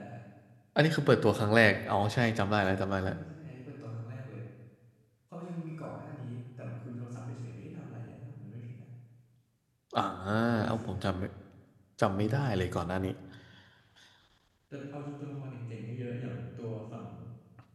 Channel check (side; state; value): both; identical; correlation 1.00